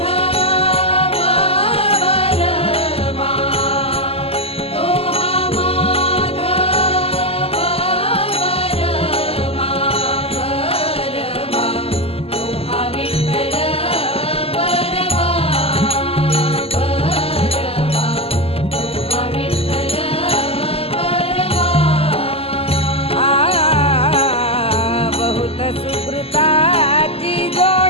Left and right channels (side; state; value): right; late; 0.28 ms